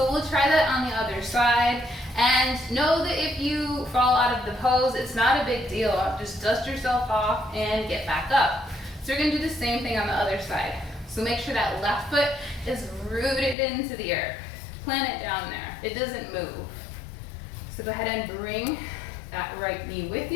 we'll try that on the other side. And know that if you fall out of the pose, it's not a big deal. Just dust yourself off and get back up. So we're gonna do the same thing on the other side. So make sure that left foot is rooted into the earth. Plant it down there. It doesn't move. So go ahead and bring that right knee with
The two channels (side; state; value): right; drops out; at 13.6 s